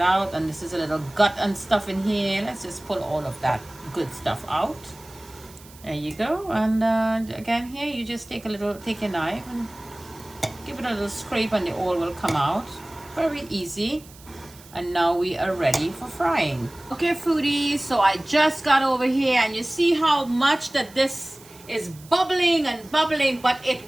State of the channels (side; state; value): right; noise; hiss, 22 dB below the sound